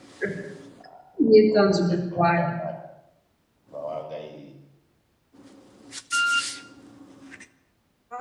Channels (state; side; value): identical; both; correlation 1.00